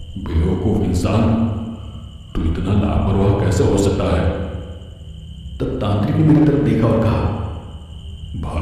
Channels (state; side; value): identical; both; correlation 1.00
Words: बेवकूफ इंसान, तू इतना लापरवाह कैसे हो सकता है? तब तांत्रिक ने मेरी तरफ देखा और कहा,